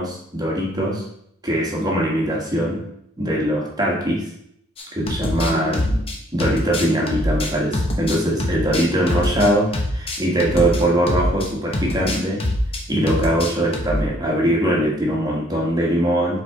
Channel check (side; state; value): both; normal; correlation 0.63